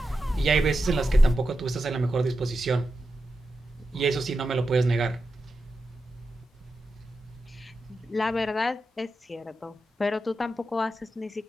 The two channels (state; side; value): normal; both; correlation 0.89